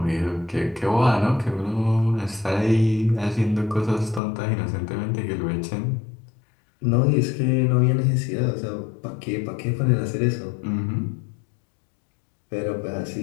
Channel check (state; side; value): drops out; right; at 4.2 s